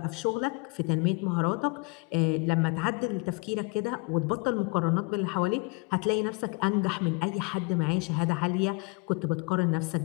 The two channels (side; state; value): right; quieter; 30.5 dB